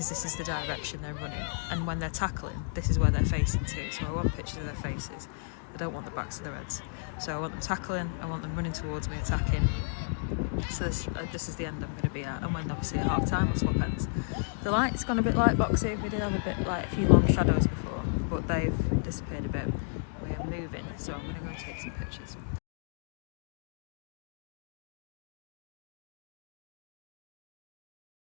this is the direction they're running. And when they're tackling, this is where they're facing to. So I want pictures of their faces. I don't want the backs of their heads. So I want them tackling, I want them running towards me, attacking. So this is the end I'm going to be at. And when obviously at half time, I'll swap ends. The light's gone a bit light boxy. We did have a bit like a few long shadows before, but they've disappeared a bit. We are moving, so I'm going to go and take some pictures.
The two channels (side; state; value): right; silent; digital silence